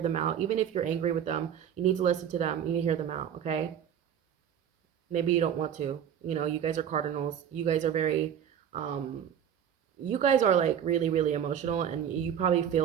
out. Even if you're angry with them, you need to listen to them. You need to hear them out. Okay, maybe you don't want to. You know, you guys are cardinals. You guys are very um you guys are like really, really emotional, and you probably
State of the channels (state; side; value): quieter; left; 9.0 dB